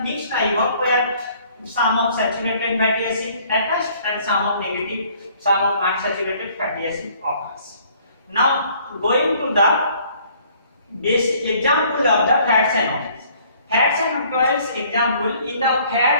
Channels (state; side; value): inverted; both; correlation -0.59